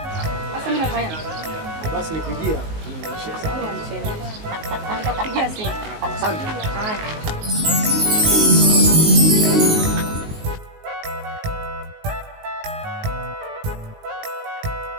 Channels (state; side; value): late; left; 19 ms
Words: Sasa mimi nafanya. Basi nikujia. Sawa. Nitakupigia simu. Asante. Haya.